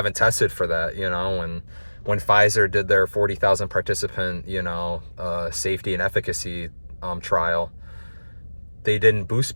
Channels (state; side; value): inverted; both; correlation -1.00